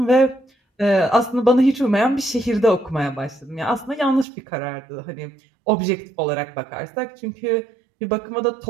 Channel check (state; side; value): drops out; left; at 4.2 s